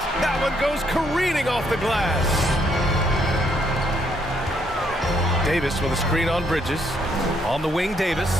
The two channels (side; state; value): both; normal; correlation 0.71